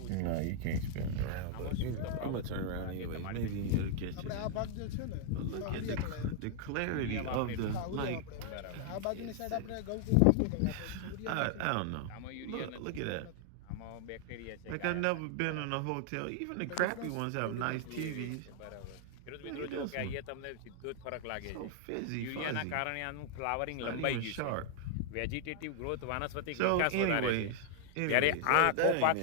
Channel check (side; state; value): both; different; correlation 0.00